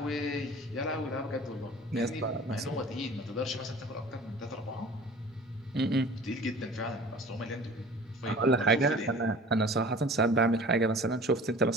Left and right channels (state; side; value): normal; both; correlation 0.44